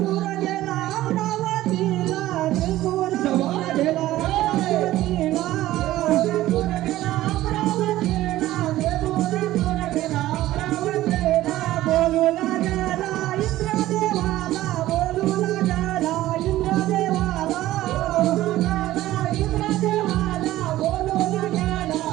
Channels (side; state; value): left; quieter; 15.3 dB